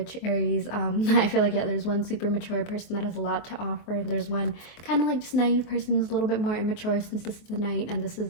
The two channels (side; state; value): right; late; 24 ms